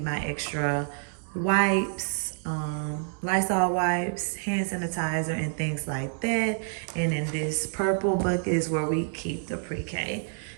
my extra wipes, Lysol wipes, hand sanitizer, and things like that. And in this purple bucket is where we keep the pre-K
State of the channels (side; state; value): left; silent; digital silence